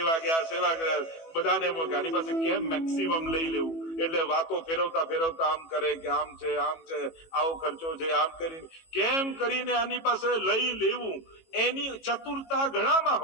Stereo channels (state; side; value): late; right; 18 ms